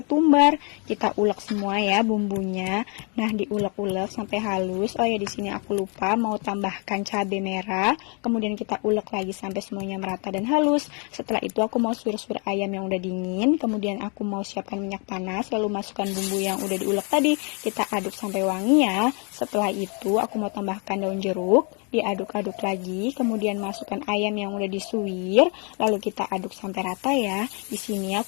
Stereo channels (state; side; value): quieter; right; 35.6 dB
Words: Kita ulek semua ya bumbunya. Nah, diulek-ulek sampai halus. Oh ya, di sini aku lupa mau tambahkan cabai merah. Kemudian kita ulek lagi sampai semuanya merata dan halus. Setelah itu aku mau suir-suir ayam yang udah dingin. Kemudian aku mau siapkan minyak panas, lalu masukkan bumbu yang udah diulek tadi. Kita aduk sampai wangi ya. Setelah itu aku mau tambahkan daun jeruk, diaduk-aduk lagi. Kemudian masukkan ayam yang udah disuir, lalu kita aduk sampai rata ya. Di sini